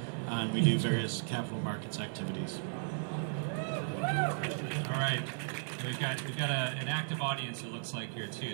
and we do various capital markets activities. All right, we've got an active audience, it looks like, here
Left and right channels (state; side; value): silent; left; 54 dB below the other